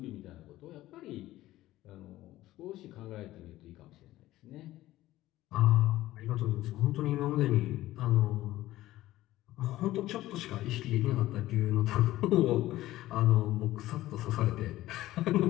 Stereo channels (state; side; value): quieter; right; 15.7 dB